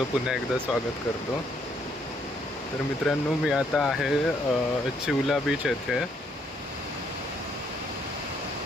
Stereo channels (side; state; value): both; normal; correlation 0.70